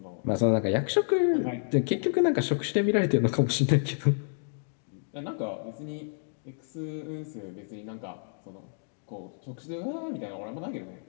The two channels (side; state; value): right; silent; digital silence